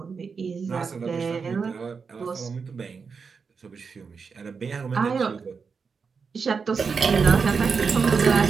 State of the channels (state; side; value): quieter; left; 5.4 dB